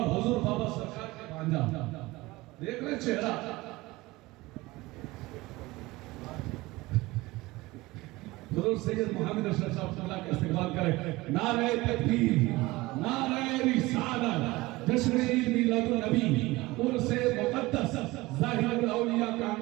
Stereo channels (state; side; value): quieter; left; 20.5 dB